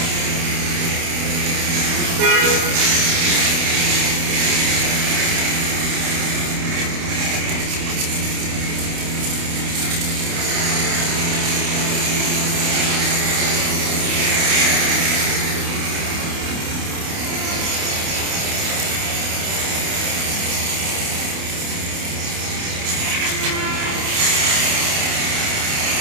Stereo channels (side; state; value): left; late; 28 ms